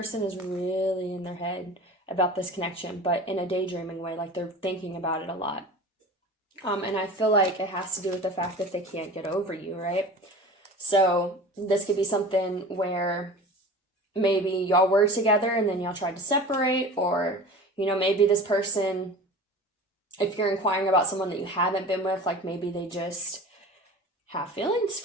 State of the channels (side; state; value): both; normal; correlation 0.37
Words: is really in their head about this connection, but in a daydreaming way, like they're thinking about it a lot. And I feel like it has to do with the fact that they can't get over you, right? So this could be something where maybe y'all were together and then y'all tried to separate, or, you know, maybe this person, if you're inquiring about someone that you haven't been with, like maybe they just have feelings